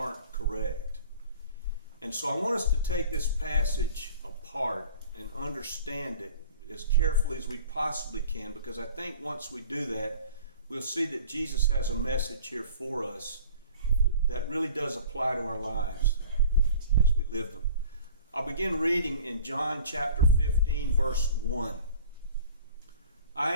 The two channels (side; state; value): both; inverted; correlation -0.46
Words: correct. And so I want us to take this passage apart and understand it as carefully as we possibly can, because I think once we do that, we'll see that Jesus has a message here for us that really does apply to our lives as we live them. I'll begin reading in John chapter 15, verse 1. I